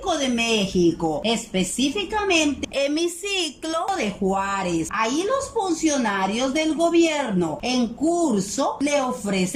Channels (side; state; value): both; identical; correlation 1.00